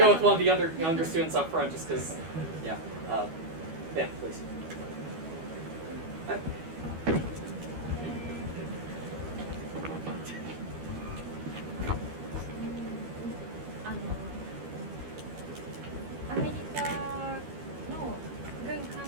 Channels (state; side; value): late; left; 12 ms